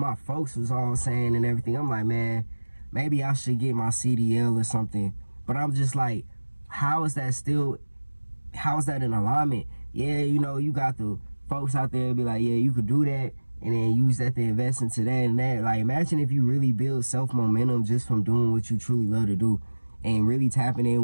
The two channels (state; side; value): inverted; both; correlation -1.00